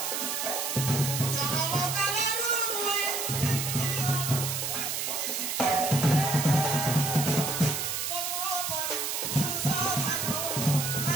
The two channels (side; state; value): right; noise; hiss, 2 dB below the sound